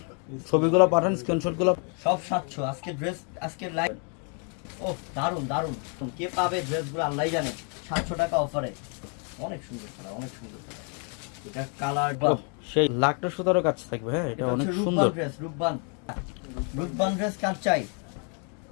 ছবিগুলো পাঠান, স্ক্রিনশটগুলো। সব 700 আজকে ড্রেস, আজকে লাইভ। ও দারুন দারুন, কে পাবে ড্রেসগুলো আল্লাহই জানে। 700 টাকা অফারে, অনেক সুন্দর কালার, অনেক সুন্দর কালার। এটা কালার সেই লাখটা সুতারও কাছে থাকবে। হ্যাঁ, এটা অনেক সুন্দর ড্রেস। রূপবান রূপবান ড্রেস কার চাই?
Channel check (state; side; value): quieter; right; 39.4 dB